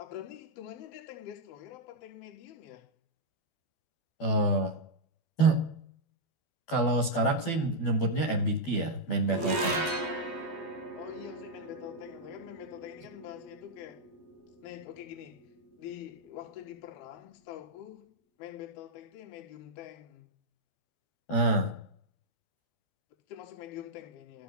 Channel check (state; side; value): late; right; 12 ms